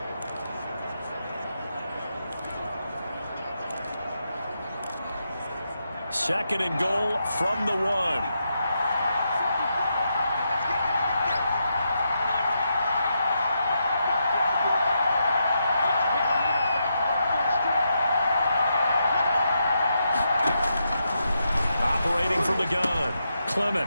second and goal from the 1. Operating from the gun,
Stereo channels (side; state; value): both; inverted; correlation -0.83